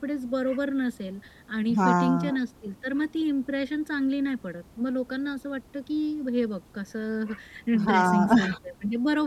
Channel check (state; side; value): identical; both; correlation 1.00